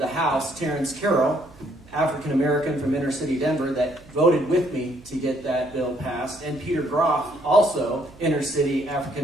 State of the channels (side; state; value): right; noise; hum, 24 dB below the sound